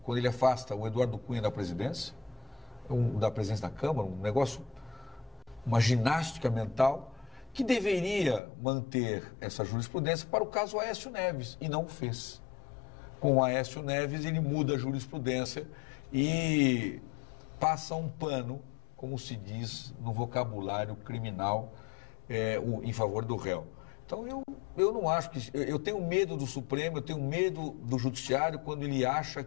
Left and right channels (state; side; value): drops out; right; at 8.4 s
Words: quando ele afasta o Eduardo Cunha da presidência da Câmara, um negócio, uma ginástica mental, que deveria manter essa jurisprudência para o caso Aécio Neves, e não o fez. Com o Aécio Neves, ele muda a jurisprudência e passa um pano, como se diz no vocabulário criminal, em favor do réu. Então, eu não acho que... Eu tenho medo do Supremo, eu tenho medo do Judiciário quando ele acha